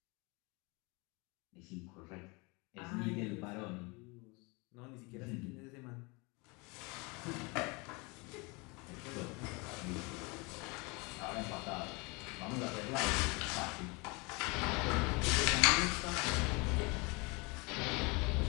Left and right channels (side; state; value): right; quieter; 28.1 dB